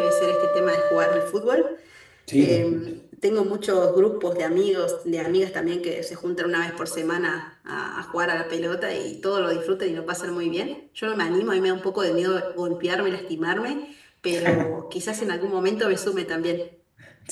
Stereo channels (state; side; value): identical; both; correlation 1.00